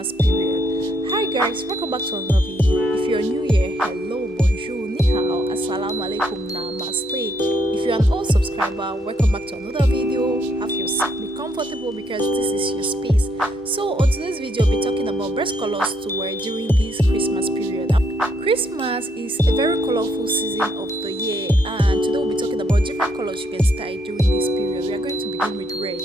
period. Hi guys, welcome back to another video. If you're new here, hello, bonjour, ni hao, assalamu alaikum, namaste. If you're an old subscriber, welcome back to another video. Have your seat, be comfortable because this is your space. So on today's video, we'll be talking about best colors to wear during this Christmas period. Christmas is a very colorful season of the year, and today we'll be talking about different colors you can style during this period. We are going to begin with red.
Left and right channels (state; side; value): normal; both; correlation 0.73